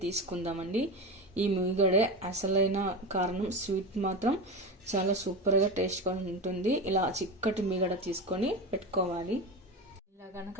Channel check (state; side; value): normal; both; correlation 0.23